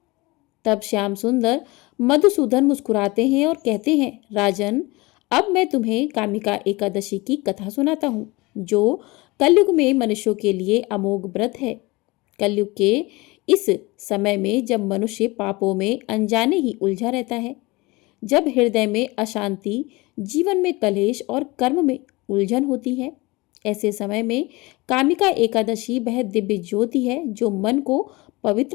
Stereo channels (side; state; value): right; quieter; 23.2 dB